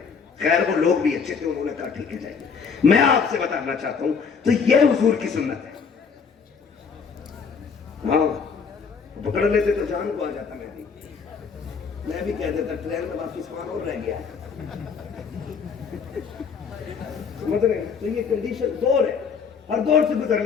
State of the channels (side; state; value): right; quieter; 5.9 dB